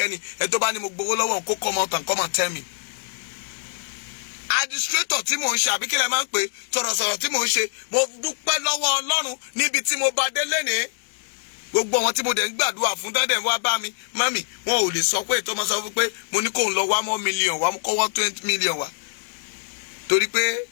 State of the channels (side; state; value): right; silent; 63 dB below the other